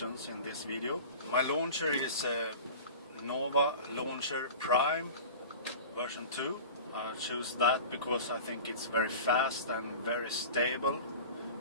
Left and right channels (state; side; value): inverted; both; correlation -0.37